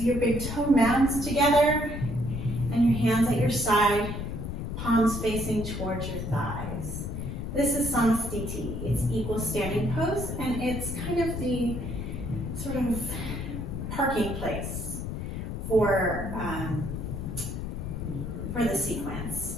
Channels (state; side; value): noise; left; rumble, 5 dB below the sound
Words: your big toe mounds together and your hands at your side, palms facing towards your thighs. This is Samasthiti. It's equal standing pose, and it's kind of the sort of parking place for the sequence.